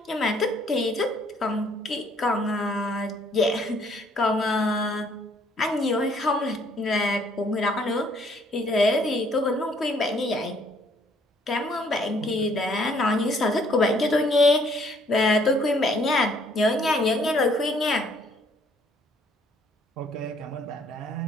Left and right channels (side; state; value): both; normal; correlation 0.64